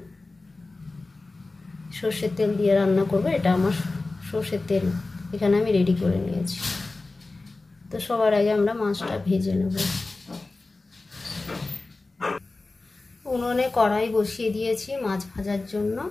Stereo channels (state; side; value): quieter; right; 3.3 dB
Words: সর্ষের তেল দিয়ে রান্না করব, এটা আমার সর্ষের তেল এখানে আমি রেডি করে নিয়েছি। তো সবার আগে আমরা মাছটা ভেজে নেব। উনুনে কড়াই বসিয়ে দিয়েছি মাছ ভাজার জন্য।